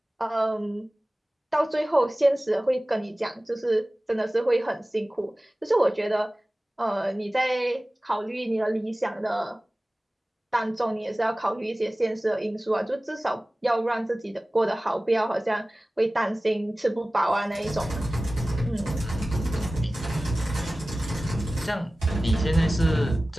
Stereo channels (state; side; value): normal; both; correlation 0.97